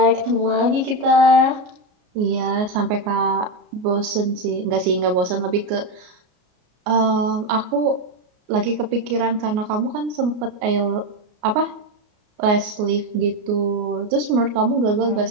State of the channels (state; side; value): late; left; 33 ms